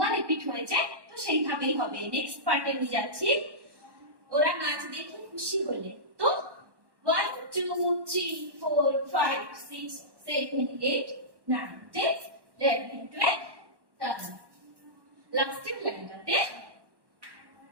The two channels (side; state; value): left; late; 1.1 ms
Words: রিপিট হয়েছে তো সেইভাবেই হবে নেক্সট পার্টে নিয়ে যাচ্ছি ওরা নাচ দেখে খুশি হলে তো 1 2 3 4 5 6 7 8 9 10 11 12 লাস্টের লাইনটাতে